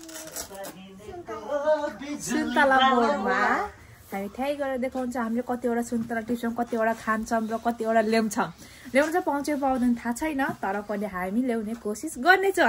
सुन्तला बोर्डमा हामी त्यही गएर देखाउँछ हामीले कतिवटा सुन्तला टिप्छौं, कतिवटा खान्छौं र कतिवटा ल्याउँछौं। ल्याउन चाहिँ पाउँछ पाउँदैन थाहा छैन, तर पनि हामी ल्याउने कोसिस गर्ने छौं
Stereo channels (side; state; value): both; identical; correlation 1.00